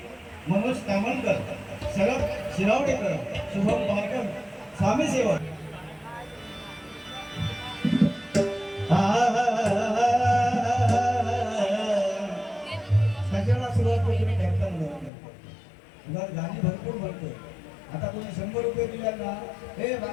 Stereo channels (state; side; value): drops out; right; at 15.1 s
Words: मनोज तामणकर शरद शिरावडेकर शुभम पारकर स्वामी सेवक त्याच्याला सुरुवात तुम्ही करताना गाणी भरपूर म्हणतो. आता कोणी 100 रुपये दिल्या ना हे